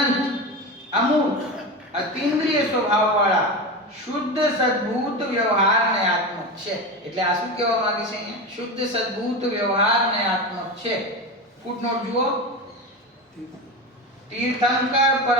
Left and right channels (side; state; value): both; normal; correlation 0.22